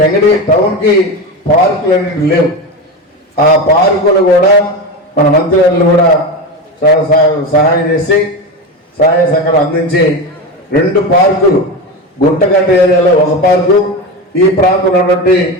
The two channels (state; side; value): normal; both; correlation 0.20